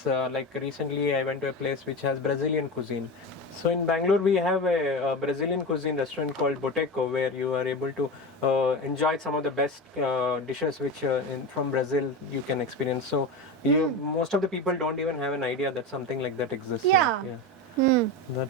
like recently I went to a place which has Brazilian cuisine. So in Bangalore we have a Brazilian cuisine restaurant called Boteco, where you are able to enjoy some of the best dishes which from Brazil you can experience. So most of the people don't even have an idea that something like that exists. Yeah.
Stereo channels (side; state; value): both; normal; correlation 0.23